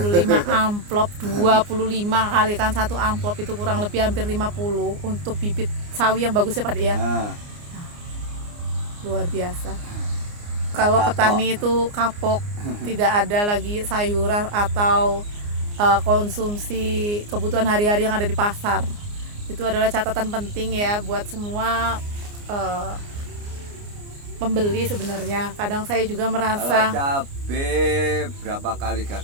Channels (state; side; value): late; left; 29 ms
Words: amplop, 25 kali kan satu amplop itu kurang lebih hampir 50 untuk bibit sawi yang bagus ya Pak De ya. Luar biasa. Kalau petani itu kapok, tidak ada lagi sayuran atau konsumsi kebutuhan hari-hari yang ada di pasar. Itu adalah catatan penting ya buat semua pembeli sebenarnya. Kadang saya juga merasa kalau cabai berapa kali